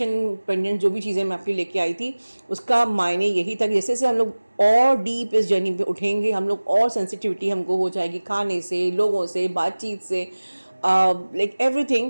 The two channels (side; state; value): both; inverted; correlation -1.00